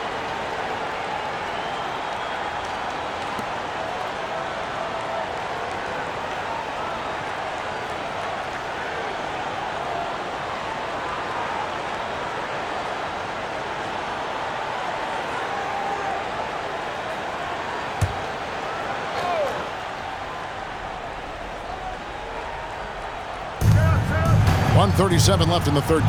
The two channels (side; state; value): both; identical; correlation 1.00